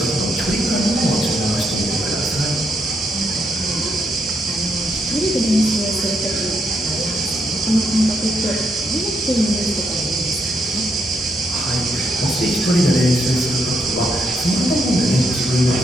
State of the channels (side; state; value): both; normal; correlation 0.77